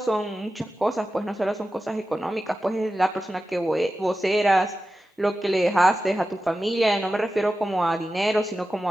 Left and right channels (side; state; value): both; normal; correlation 0.93